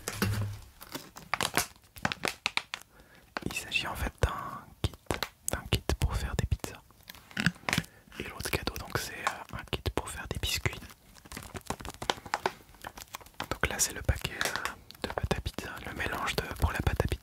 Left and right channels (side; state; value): both; identical; correlation 1.00